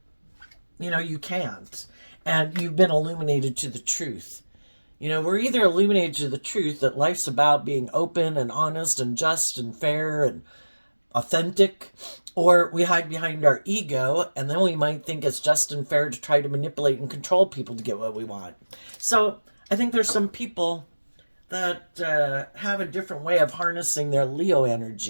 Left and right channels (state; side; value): inverted; both; correlation -1.00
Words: you can't. And you've been illuminated to the truth. We're either illuminated to the truth that life's about being open and honest and just and fair and authentic, or we hide behind our ego, and then we might think it's just and fair to try to manipulate and control people to get what we want. So I think there's some people that have a different way of harnessing their Leo